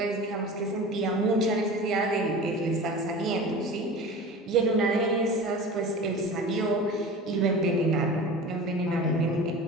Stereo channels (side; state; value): both; normal; correlation 0.35